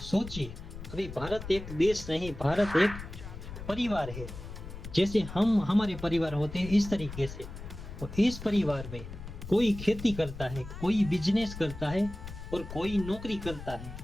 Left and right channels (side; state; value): left; noise; rumble, 11 dB below the sound